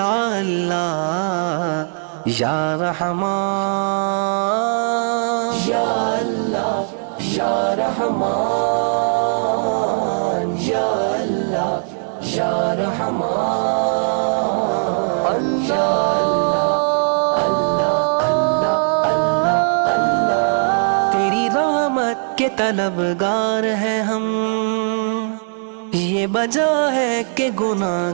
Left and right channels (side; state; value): left; silent; digital silence